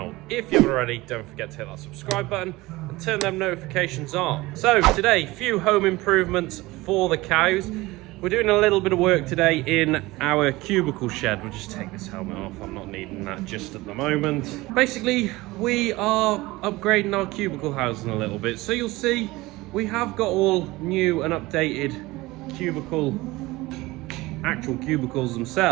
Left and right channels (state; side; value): quieter; left; 20.2 dB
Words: If you haven't already, don't forget to hit that subscribe button and turn them notifications on. So today, few home improvements for the cows. We're doing a little bit of work today in our cubicle shed. We'll just take this helmet off, I'm not needing that just at the moment. Basically, we are upgrading our cubicle housing a little bit. So you'll see, we have got all new and updated actual cubicles